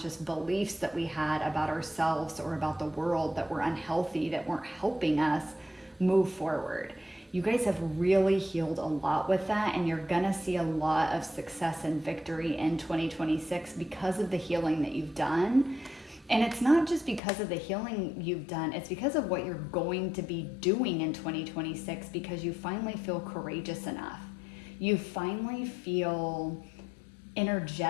beliefs that we had about ourselves or about the world that were unhealthy, that weren't helping us move forward. You guys have really healed a lot with that, and you're gonna see a lot of success and victory in 2026 because of the healing that you've done. And it's not just because of the healing you've done, it's because of what you're going to be doing in 2026, because you finally feel courageous enough. You finally feel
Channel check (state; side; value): drops out; right; at 17.2 s